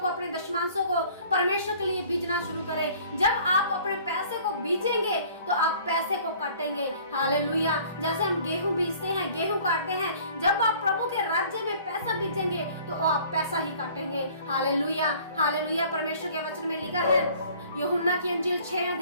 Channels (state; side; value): inverted; both; correlation -0.52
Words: अपने दशमांशों को परमेश्वर के लिए बीजना शुरू करें। जब आप अपने पैसे को बीजेंगे तो आप पैसे को काटेंगे। हालेलुया। जैसे हम गेहूं बीजते हैं, गेहूं काटते हैं, जब आप प्रभु के राज्य में पैसा बीजेंगे तो आप पैसा ही काटेंगे। Hallelujah, hallelujah. परमेश्वर के वचन में लिखा है, यूहन्ना की अंजील 6